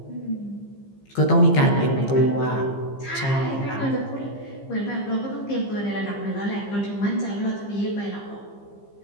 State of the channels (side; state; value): right; late; 15 ms